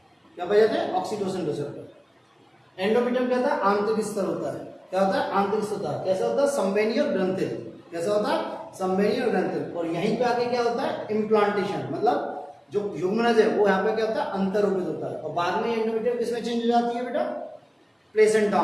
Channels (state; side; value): identical; both; correlation 1.00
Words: क्या पाए जाते हैं? Oxytocin receptor. एंडोमेट्रियम क्या होता है? आंतरिक स्तर होता है। क्या होता है? आंतरिक स्तर होता है। कैसा होता है? संवहनी और ग्रंथिल। कैसा होता है? संवहनी और ग्रंथिल। और यहीं पे आके क्या होता है? इम्प्लांटेशन, मतलब जो युग्मनज है वो यहाँ पे क्या होता है? अंतर्रोपित होता है। और बाद में एंडोमेट्रियम किसमें चेंज हो जाती है बेटा? प्लेसेंटा